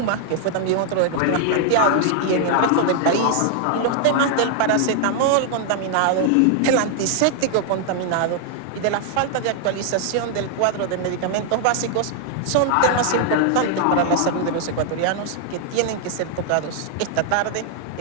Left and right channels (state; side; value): different; both; correlation 0.00